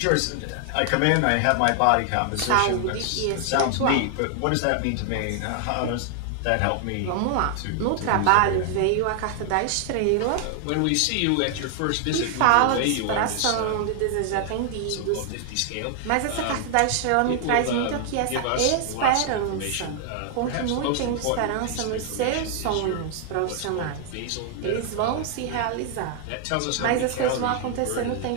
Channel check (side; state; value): both; different; correlation 0.00